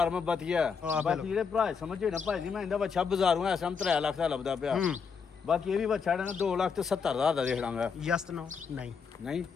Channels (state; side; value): quieter; right; 5.9 dB